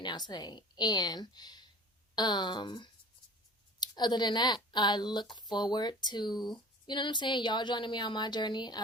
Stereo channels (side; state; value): both; normal; correlation 0.41